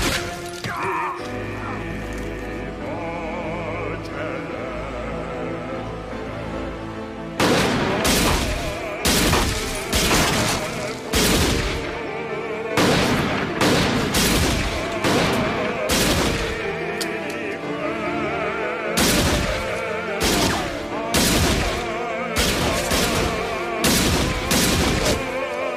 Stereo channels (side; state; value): both; identical; correlation 1.00